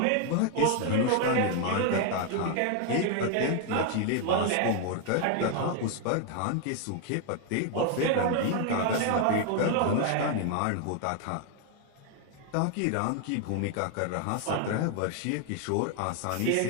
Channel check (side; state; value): both; different; correlation 0.00